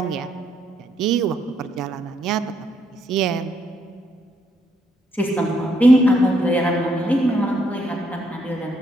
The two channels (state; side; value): normal; both; correlation 0.74